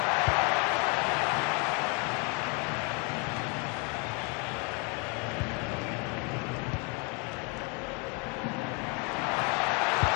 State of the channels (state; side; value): quieter; right; 30.0 dB